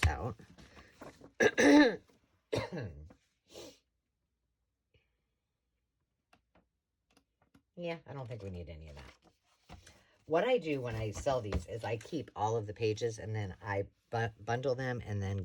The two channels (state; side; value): identical; both; correlation 1.00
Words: out. Yeah, I don't think we need any of that. What I do when I sell these is I keep all of the pages and then I bundle them and then